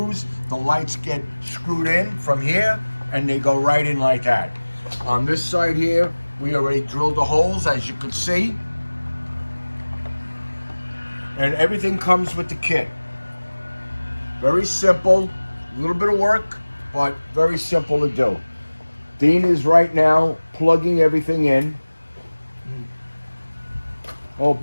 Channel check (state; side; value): inverted; both; correlation -1.00